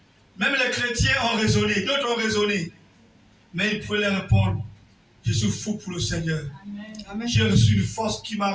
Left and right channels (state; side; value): identical; both; correlation 1.00